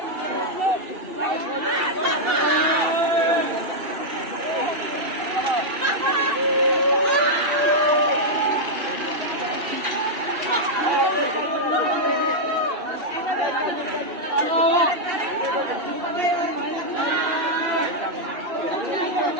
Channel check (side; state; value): left; late; 2.7 ms